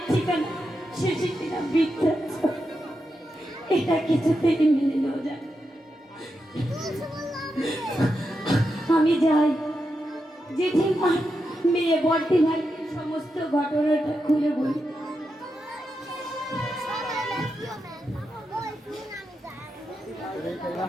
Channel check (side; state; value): both; normal; correlation 0.87